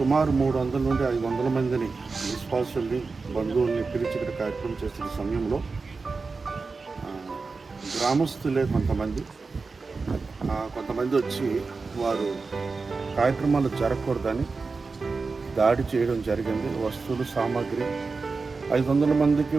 300 నుండి 500 మందిని విశ్వాసుల్ని బంధువుల్ని పిలిచి ఇక్కడ కార్యక్రమం చేస్తున్న సమయంలో గ్రామస్తులే కొంతమంది వచ్చి వారు కార్యక్రమాలు జరగకూడదని దాడి చేయడం జరిగింది. వస్తువులు సామాగ్రి 500 మందికి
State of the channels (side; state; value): left; quieter; 4.3 dB